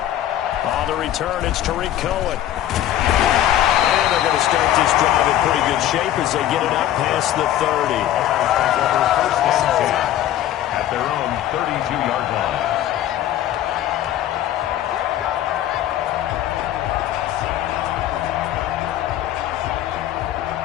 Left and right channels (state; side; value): quieter; right; 12.5 dB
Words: On the return, it's Tariq Cohen. And they're going to start this drive in pretty good shape as they get it up past the 30. At their own 32-yard line.